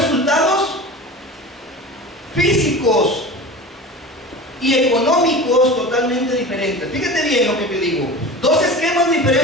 físicos y económicos totalmente diferentes. Fíjate bien lo que te digo. 2 esquemas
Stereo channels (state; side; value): normal; both; correlation 0.34